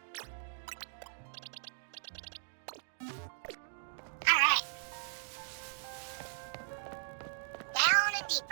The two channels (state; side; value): silent; left; digital silence